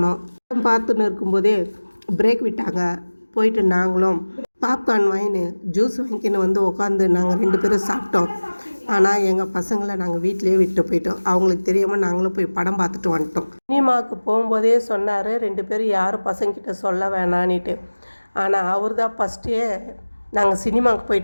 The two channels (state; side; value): inverted; both; correlation -1.00